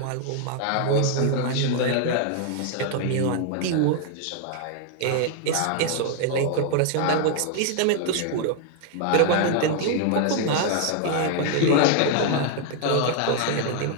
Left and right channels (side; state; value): both; different; correlation 0.00